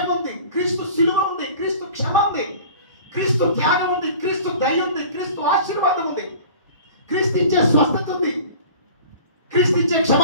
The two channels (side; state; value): both; inverted; correlation -0.43